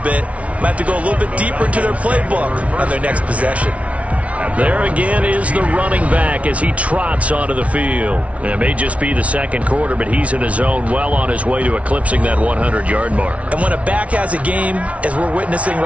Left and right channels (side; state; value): left; late; 0.065 ms